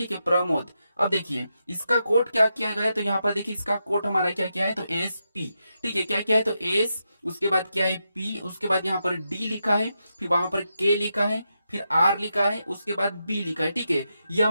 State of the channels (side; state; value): both; inverted; correlation -0.85